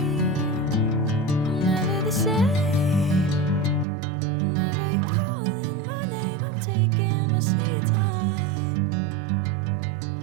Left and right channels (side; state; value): left; drops out; at 3.9 s